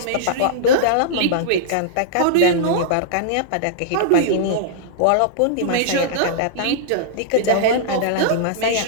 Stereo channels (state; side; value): different; both; correlation -0.02